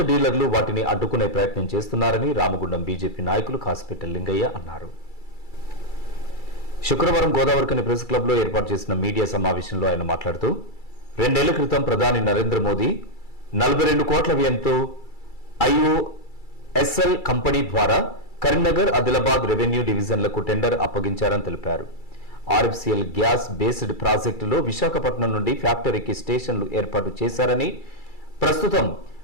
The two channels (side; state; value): right; late; 2.3 ms